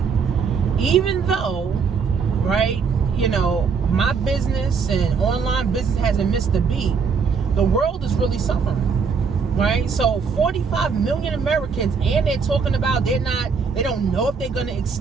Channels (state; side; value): quieter; left; 5.6 dB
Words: Even though, right, my business and online business hasn't missed a beat, the world is really suffering, right? So 45 million Americans, and they're talking about they don't know if they're going to